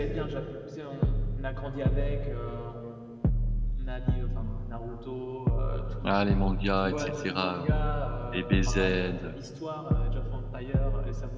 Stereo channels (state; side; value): identical; both; correlation 1.00